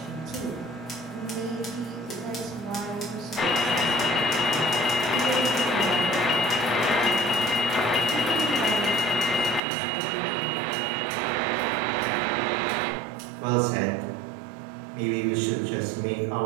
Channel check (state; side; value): drops out; left; at 9.6 s